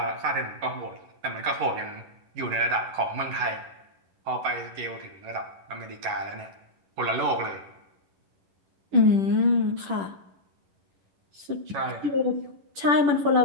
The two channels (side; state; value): left; late; 10 ms